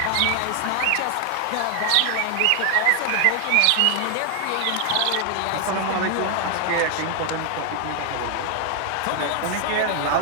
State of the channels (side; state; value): both; different; correlation 0.00